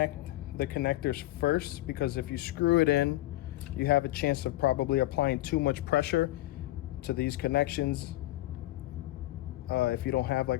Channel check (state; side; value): quieter; right; 16.8 dB